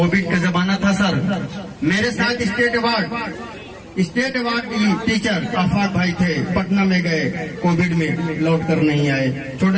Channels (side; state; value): both; identical; correlation 1.00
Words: का जमाना था सर, मेरे साथ स्टेट अवार्ड टीचर आफाक भाई थे, पटना में गए, कोविड में लौट कर नहीं आए,